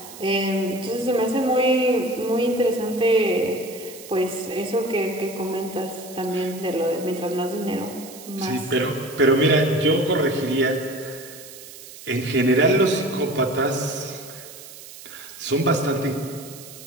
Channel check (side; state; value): right; noise; hiss, 16 dB below the sound